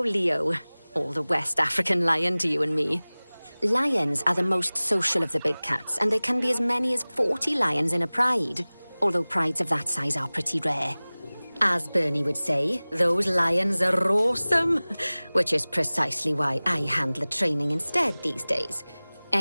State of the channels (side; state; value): both; inverted; correlation -1.00